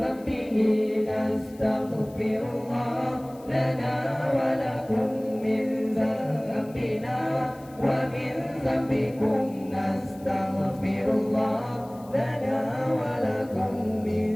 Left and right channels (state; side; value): noise; left; hiss, 25 dB below the sound